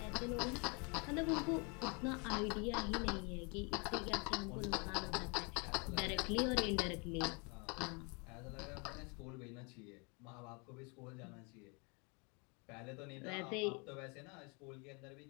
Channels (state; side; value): quieter; right; 32.4 dB